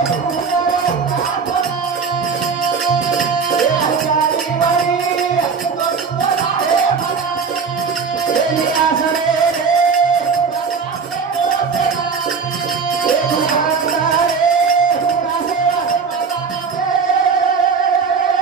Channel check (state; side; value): quieter; left; 5.5 dB